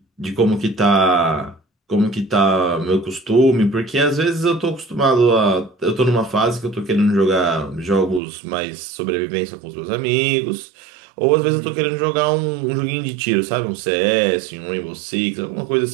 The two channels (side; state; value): left; drops out; at 8.2 s